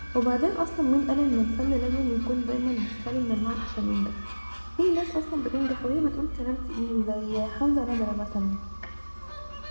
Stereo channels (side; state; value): both; inverted; correlation -1.00